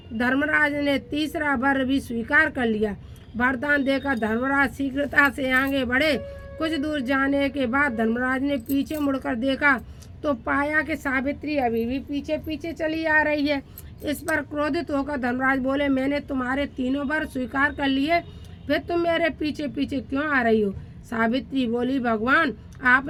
धर्मराज ने तीसरा वर भी स्वीकार कर लिया। वरदान देकर धर्मराज शीघ्रता से आगे बढ़े। कुछ दूर जाने के बाद धर्मराज ने पीछे मुड़कर देखा तो पाया कि सावित्री अभी भी पीछे पीछे चली आ रही है। इस पर क्रोधित होकर धर्मराज बोले, मैंने तुम्हारे 3 वर स्वीकार कर लिए, फिर तुम मेरे पीछे पीछे क्यों आ रही हो? सावित्री बोली, भगवान,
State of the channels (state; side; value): identical; both; correlation 1.00